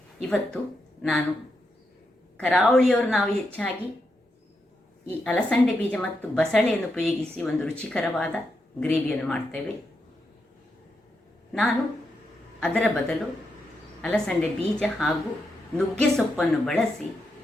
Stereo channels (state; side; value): normal; both; correlation 0.84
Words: ಇವತ್ತು ನಾನು ಕರಾವಳಿಯವರು ನಾವು ಹೆಚ್ಚಾಗಿ ಈ ಅಲಸಂಡೆ ಬೀಜ ಮತ್ತು ಬಸಳೆಯನ್ನು ಉಪಯೋಗಿಸಿ ಒಂದು ರುಚಿಕರವಾದ ಗ್ರೇವಿಯನ್ನು ಮಾಡ್ತೇವೆ. ನಾನು ಅದರ ಬದಲು ಅಲಸಂಡೆ ಬೀಜ ಹಾಗೂ ನುಗ್ಗೆ ಸೊಪ್ಪನ್ನು ಬಳಸಿ